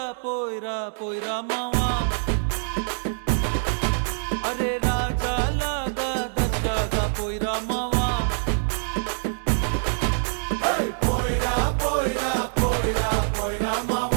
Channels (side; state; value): left; silent; digital silence